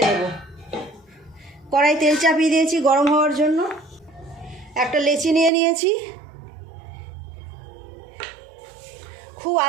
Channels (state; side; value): drops out; left; at 5.5 s